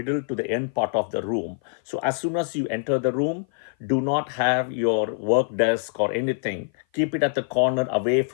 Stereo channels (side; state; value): right; silent; 56 dB below the other